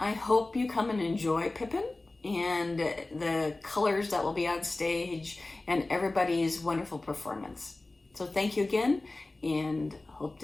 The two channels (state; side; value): quieter; right; 3.0 dB